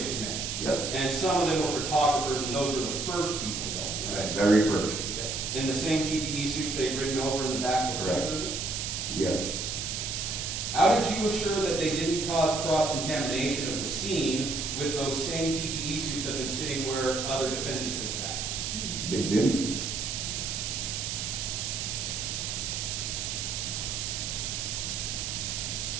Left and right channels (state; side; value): noise; right; hiss, 3 dB below the sound